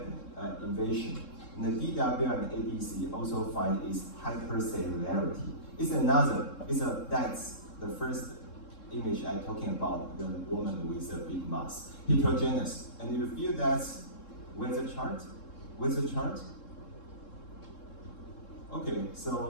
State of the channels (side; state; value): right; late; 3.7 ms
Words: invasion. And the DWI and ADC also find is hypercellularity. That's the first image I'm talking about, the woman with a big mass, heterogeneous. And you feel that with the chart? With the chart? Okay,